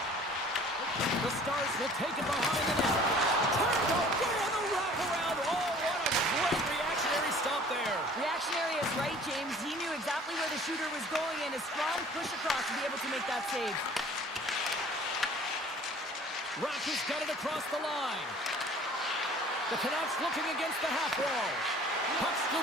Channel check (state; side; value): normal; both; correlation 0.50